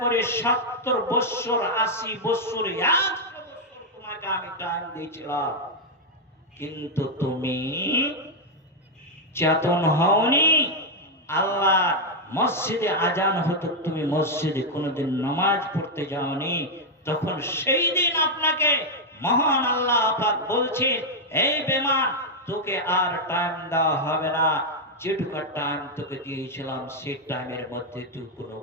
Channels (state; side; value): normal; both; correlation -0.01